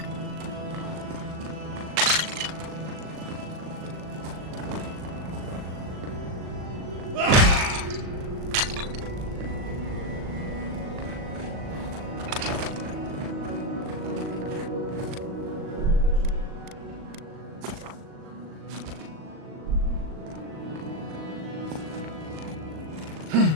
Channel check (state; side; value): late; left; 38 ms